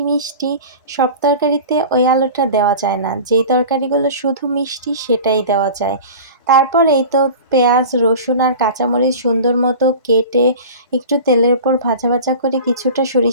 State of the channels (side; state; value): both; inverted; correlation -0.36